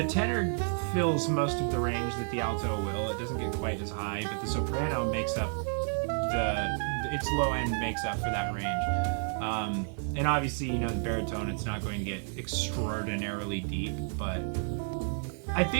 tenor fills most of the range that the alto will. It doesn't get quite as high, but the soprano makes up its low end makes up for that range. And obviously, the baritone, it's not going to get extraordinarily deep, but I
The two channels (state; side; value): silent; left; 57 dB below the other